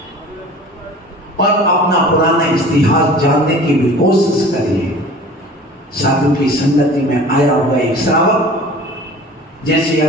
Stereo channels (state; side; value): normal; both; correlation 0.43